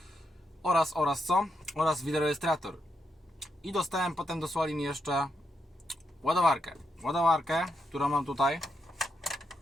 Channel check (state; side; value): normal; both; correlation 0.82